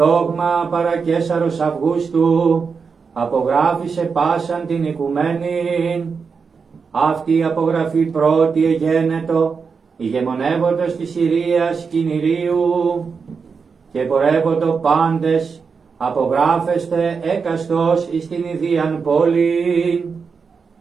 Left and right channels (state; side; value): quieter; left; 5.5 dB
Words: παρά Καίσαρος Αυγούστου, απογράφησε πάσαν την οικουμένη. Αυτή η απογραφή πρώτη εγένετο, ηγεμονεύοντος της Συρίας Κινηρίου, και πορεύοντο πάντες, απογράφεστε έκαστος εις την ιδίαν πόλη.